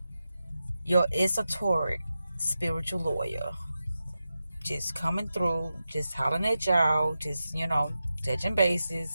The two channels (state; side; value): inverted; both; correlation -0.91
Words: your esoteric spiritual lawyer. Just coming through, just hollering at y'all, just, touching bases.